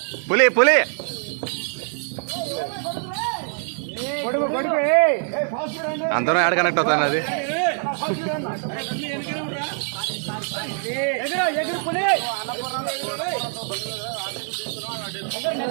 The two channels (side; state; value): left; silent; 63 dB below the other